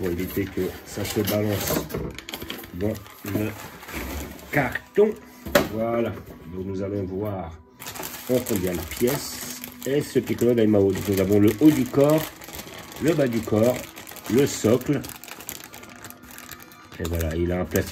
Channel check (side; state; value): both; identical; correlation 1.00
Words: éviter que ça se balance dans le carton. Voilà, donc nous allons voir en combien de pièces est ce Piccolo Daimao. Donc nous avons le haut du corps, le bas du corps, le socle. Et voilà, il a un